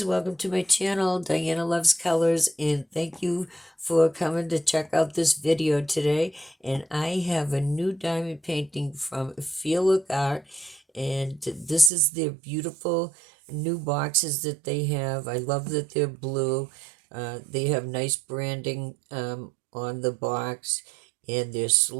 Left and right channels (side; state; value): left; drops out; at 11.9 s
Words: welcome to my channel. Diana Loves Colors, and thank you for coming to check out this video today. And I have a new diamond painting from Feelook Art, and this is their beautiful new boxes that they have. I love that they're blue. They have nice branding on the box, and their